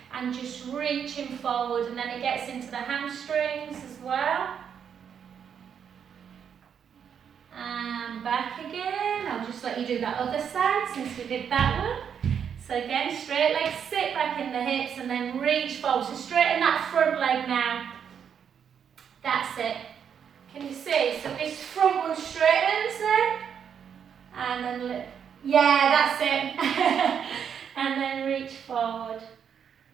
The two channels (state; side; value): quieter; left; 7.8 dB